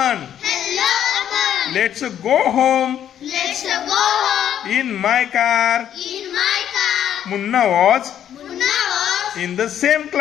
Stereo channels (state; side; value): quieter; right; 10.1 dB